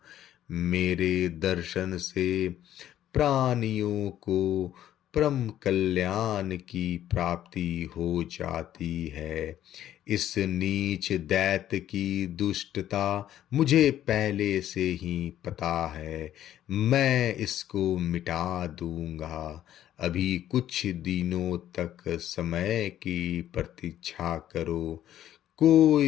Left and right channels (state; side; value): quieter; right; 11.9 dB